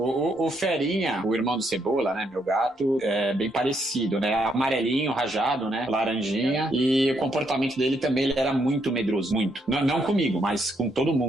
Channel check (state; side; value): normal; both; correlation 0.75